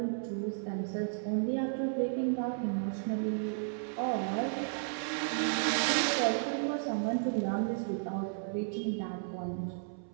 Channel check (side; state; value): left; silent; 55 dB below the other